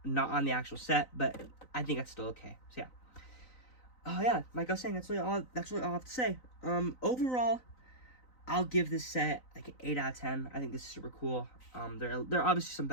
not on the actual set. But I think that's still okay. So yeah. Oh yeah, like I was saying, that's really all I have to say. Overall, I'll give this set like an 8 out of 10. I think this is super cool. There are obviously some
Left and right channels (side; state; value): right; late; 3.9 ms